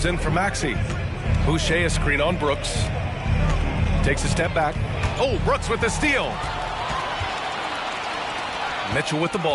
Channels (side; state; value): both; identical; correlation 1.00